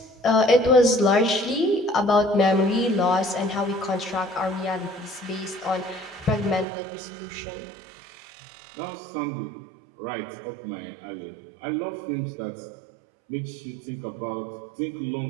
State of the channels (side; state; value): left; drops out; at 6.7 s